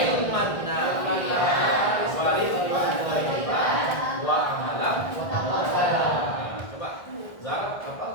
nafi'an wa rizqan thayyiban wa amalan mutaqabbalan. Coba Zara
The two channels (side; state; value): right; late; 1.7 ms